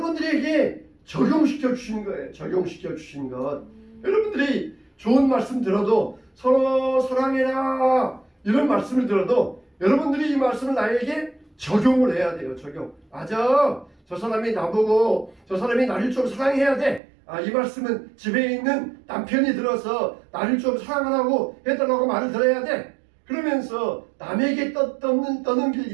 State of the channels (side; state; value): left; drops out; at 17.0 s